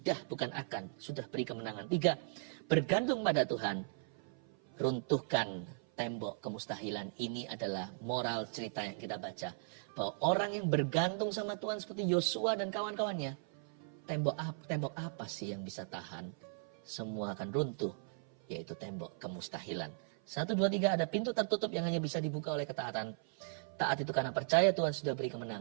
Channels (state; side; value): silent; left; 53 dB below the other